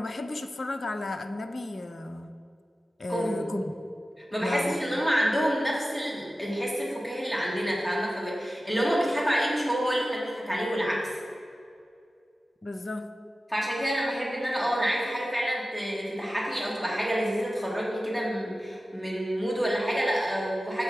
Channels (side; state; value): both; normal; correlation 0.95